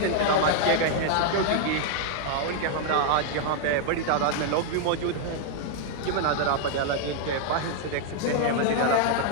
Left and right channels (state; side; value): different; both; correlation 0.00